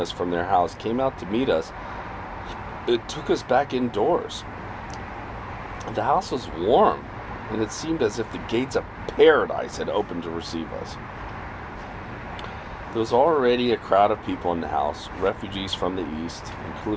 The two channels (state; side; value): identical; both; correlation 1.00